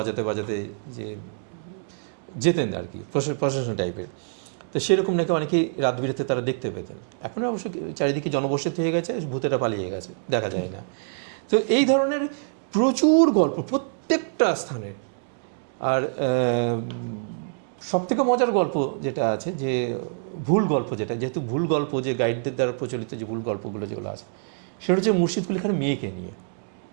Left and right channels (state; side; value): silent; left; digital silence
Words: বাজাতে যে যেতেন আর কি, প্রশাসন টাইপের। তো সেরকম নাকি অনেকেই রাত বিরেতে তারা দেখতে পেতেন। এখন অবশ্য চারিদিকে জনবসতি হয়ে গেছে, ভূতেরা পালিয়ে গেছে, দেখা যায় না। তো এই ধরনের প্রচুর গল্প প্রত্যেকটা স্থানে। আর সবথেকে মজার গল্প যেটা আছে, যে ভুল গল্প, যেটা যেহেতু ভুল গল্প, যে গাইডদের দ্বারা প্রচলিত যে ভুল গল্পগুলো যেগুলো আছে, সেটা হচ্ছে মুর্শিদ কুলি খানের মেয়েকে নিয়ে।